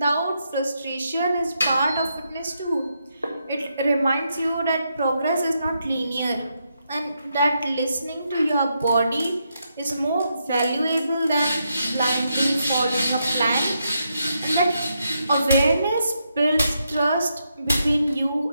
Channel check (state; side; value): inverted; both; correlation -0.81